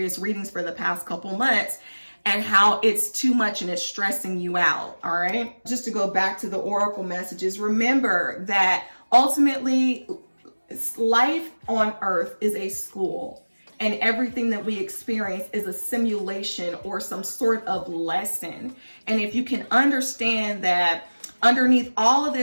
readings for the past couple months, and how it's too much and it's stressing you out. All right. Just to go back to the Oracle messages, remember that ultimately life on Earth is a school, and everything that we experience is a simulation or some sort of lesson. And if you can understand that underneath all of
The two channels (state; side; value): inverted; both; correlation -1.00